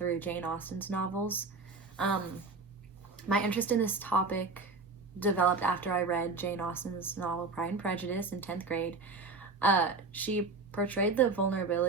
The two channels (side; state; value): left; quieter; 4.0 dB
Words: Jane Austen's novels. My interest in this topic developed after I read Jane Austen's novel Pride and Prejudice in 10th grade. She portrayed the